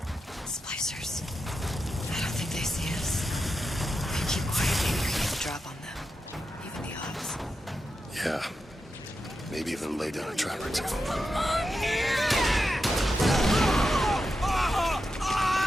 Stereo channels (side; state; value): both; normal; correlation 0.89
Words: Splicers. I don't think they see us. If you keep quiet, maybe you're going to drop on them. Even the odds. Yeah. Maybe even lay down a trap or two.